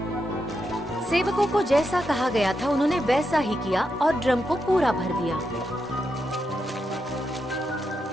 सेवकों को जैसा कहा गया था उन्होंने वैसा ही किया और ड्रम को पूरा भर दिया।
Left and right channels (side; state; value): both; normal; correlation 0.85